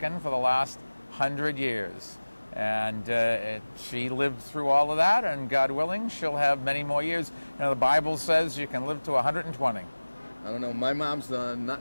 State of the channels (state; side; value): inverted; both; correlation -1.00